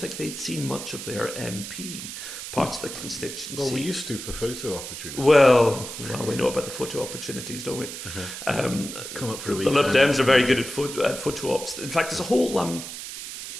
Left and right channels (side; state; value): right; noise; hiss, 9 dB below the sound